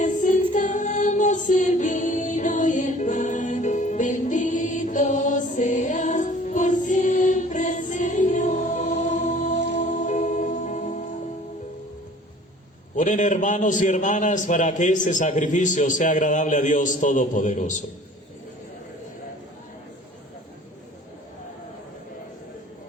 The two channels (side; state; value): both; normal; correlation 0.49